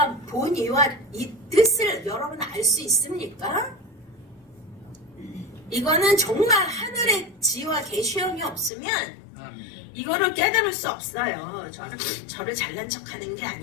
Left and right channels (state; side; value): drops out; right; at 8.7 s